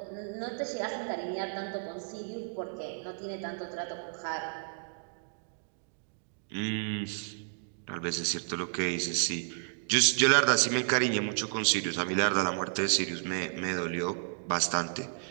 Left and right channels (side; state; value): left; silent; digital silence